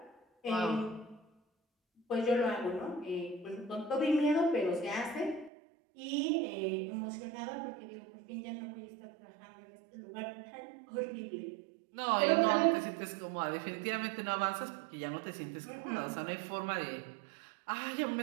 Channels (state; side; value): drops out; left; at 5.5 s